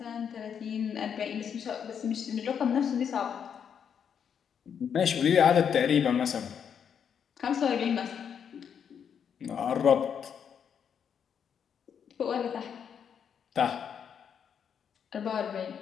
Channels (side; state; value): right; quieter; 7.7 dB